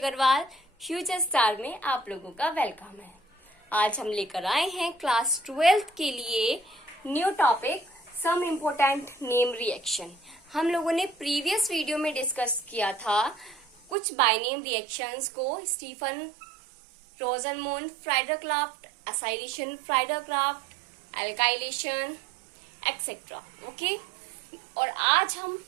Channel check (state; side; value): drops out; left; at 14.0 s